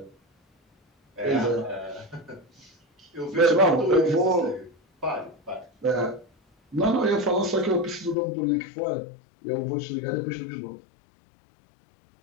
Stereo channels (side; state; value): right; drops out; at 8.2 s